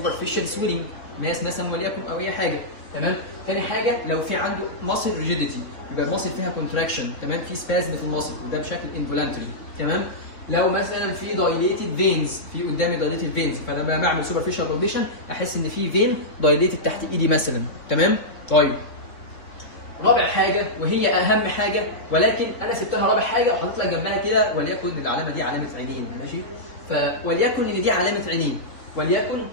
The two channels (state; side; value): late; right; 3.4 ms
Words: سويلنج ناس مثلا وليكن او اي حاجه. تمام؟ ثاني حاجه لو في عنده ماسل ريجيديتي، يبقى الماسل فيها كونتراكشن. تمام؟ في سبازم في الماسل وده بشكل انفولانتري. تمام؟ لو مثلا في دايليتد فينز، في قدامي دايليتد فينز، فانا لما بعمل سوبرفيشال بالبيشن احس ان في فين دايليتد تحت ايدي مثلا. تمام؟ طيب رابع حاجه وهي اهم حاجه، ولكن انا سبتها رابع حاجه وحطيت لك جنبها كده وليكن العلامه دي علامه عينين. ماشي؟ وليكن ان دي علامه عينين، وليكن